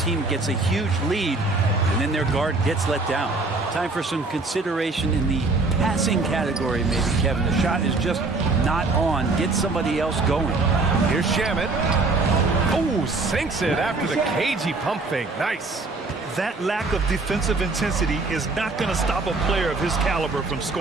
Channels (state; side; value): quieter; left; 3.5 dB